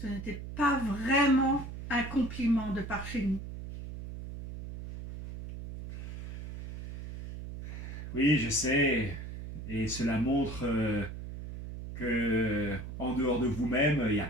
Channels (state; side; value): noise; right; hum, 9 dB below the sound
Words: ce n'était pas vraiment un compliment de par chez nous. Oui, je sais, et cela montre que, en dehors de vous-même, il n'y a